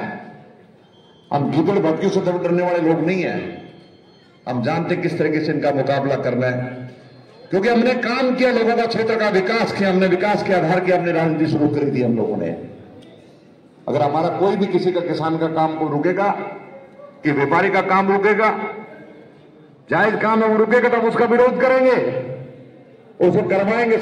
हम गीदड़ भटकियों से डरने वाले लोग नहीं है। हम जानते किस तरीके से इनका मुकाबला करना है, क्योंकि हमने काम किया, लोगों का क्षेत्र का विकास किया, हमने विकास के आधार की हमने राजनीति शुरू कर दी हम लोगों ने। अगर हमारा कोई भी किसी का किसान का काम को रुकेगा, कि व्यापारी का काम रुकेगा, जायज काम है वो रुकेगा, तो हम उसका विरोध करेंगे, उसको करवाएंगे।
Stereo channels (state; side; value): identical; both; correlation 1.00